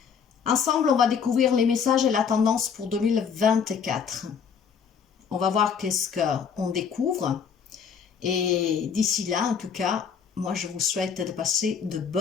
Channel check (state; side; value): quieter; right; 6.8 dB